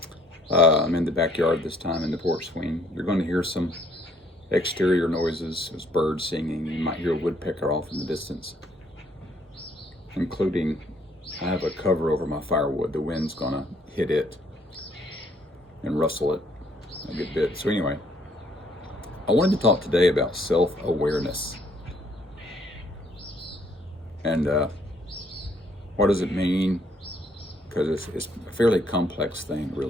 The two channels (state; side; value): normal; both; correlation 0.65